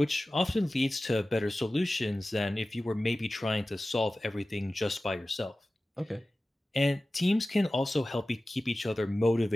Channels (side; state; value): both; normal; correlation 0.96